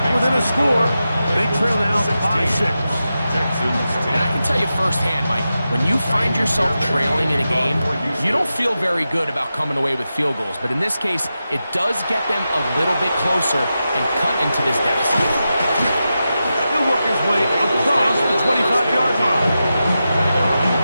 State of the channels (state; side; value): inverted; both; correlation -0.91